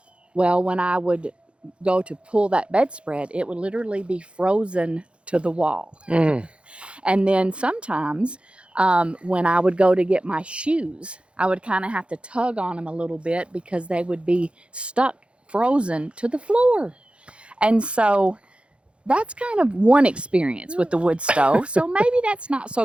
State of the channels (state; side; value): late; left; 0.059 ms